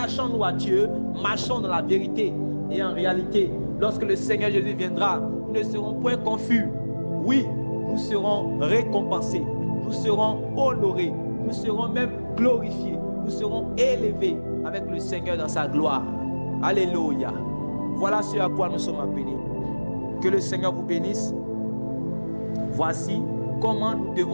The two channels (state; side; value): inverted; both; correlation -1.00